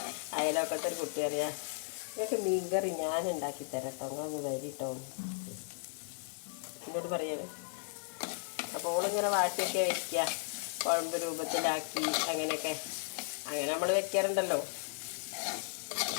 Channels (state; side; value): silent; right; 54 dB below the other